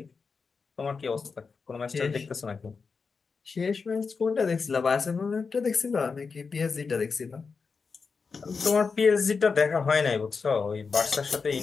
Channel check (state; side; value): quieter; right; 5.0 dB